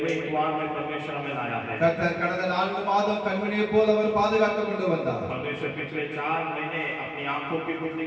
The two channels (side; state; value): both; identical; correlation 1.00